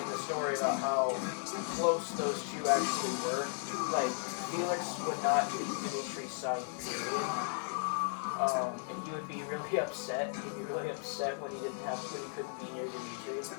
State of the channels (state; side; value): silent; right; 54 dB below the other